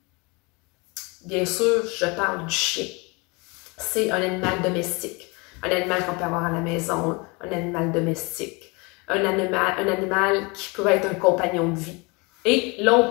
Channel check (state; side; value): quieter; right; 28.1 dB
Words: Bien sûr, je parle du chien. C'est un animal domestique. Un animal qu'on peut avoir à la maison, un animal domestique. Un animal qui peut être un compagnon de vie. Et là,